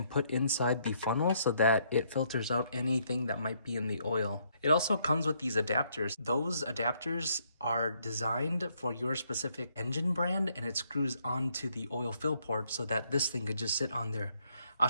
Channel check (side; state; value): both; inverted; correlation -0.71